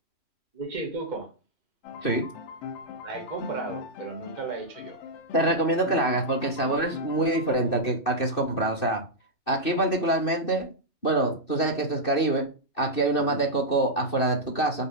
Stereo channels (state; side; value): late; right; 2.6 ms